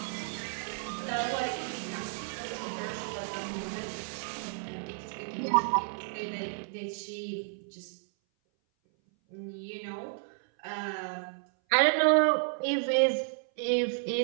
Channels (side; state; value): left; silent; 56 dB below the other